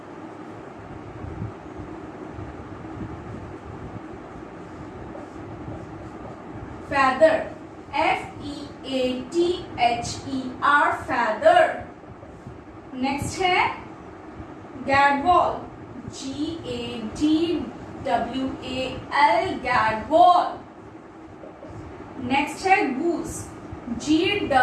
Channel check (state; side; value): identical; both; correlation 1.00